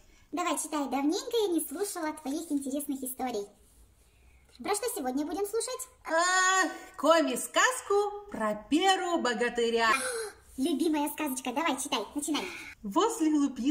Давай, читай. Давненько я не слушала твоих интересных историй. Про что сегодня будем слушать? Коми-сказку про Перу богатыря. Любимая сказочка. Давай, читай. Начинай. Возле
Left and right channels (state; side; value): identical; both; correlation 1.00